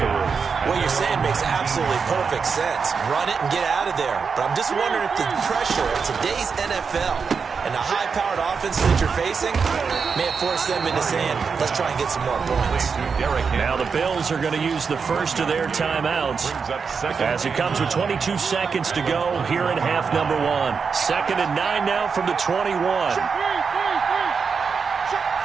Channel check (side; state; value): left; quieter; 5.6 dB